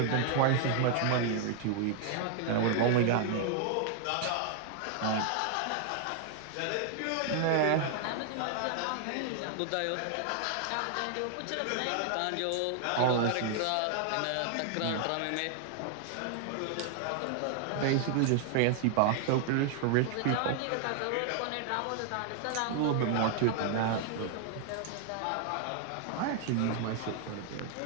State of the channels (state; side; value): different; both; correlation 0.00